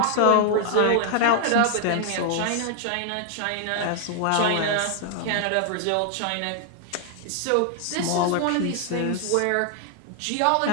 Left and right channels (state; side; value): different; both; correlation 0.00